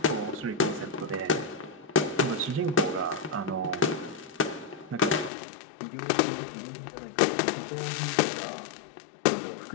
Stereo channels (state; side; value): drops out; right; at 5.3 s